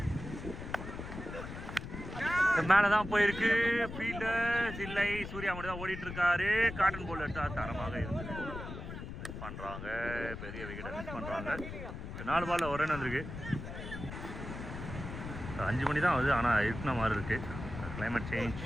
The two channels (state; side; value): noise; left; rumble, 9 dB below the sound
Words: மேலே தான் போயிருக்கு. ஃபீல்டர்ஸ் இல்லை, சூர்யா மட்டும் தான் ஓடிட்டு இருக்காரு. காட்டன் பால் எடுத்தால் தரமாக இருந்தது. மிஸ் பண்ணுறாங்க, பெரிய விக்கெட்டை மிஸ் பண்ணுறாங்க. 4 பாலில் ஒரு ரன் வந்திருக்கு. 5 மணி தான் ஆகுது, ஆனால் இருக்கிற மாதிரி இருக்குது. Climate change,